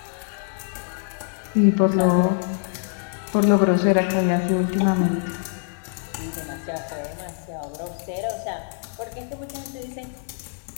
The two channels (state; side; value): silent; right; 59 dB below the other